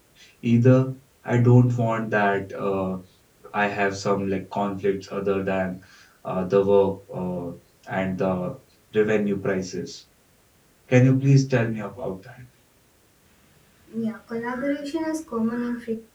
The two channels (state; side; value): identical; both; correlation 1.00